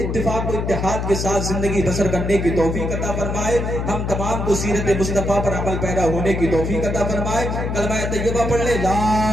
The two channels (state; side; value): noise; left; hum, 2 dB below the sound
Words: و اتحاد کے ساتھ زندگی بسر کرنے کی توفیق عطا فرمائے، ہم تمام کو سیرت مصطفیٰ پر عمل پیرا ہونے کی توفیق عطا فرمائے۔ کلمہ طیبہ پڑھ لے، لا